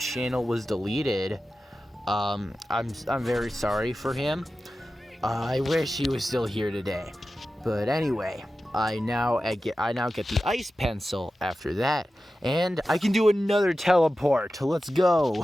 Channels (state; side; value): normal; both; correlation 0.94